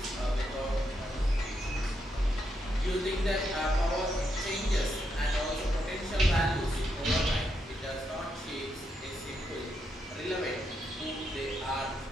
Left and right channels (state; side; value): normal; both; correlation 0.81